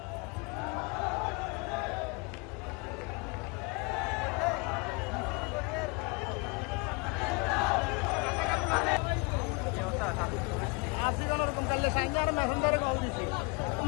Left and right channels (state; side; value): quieter; right; 30.1 dB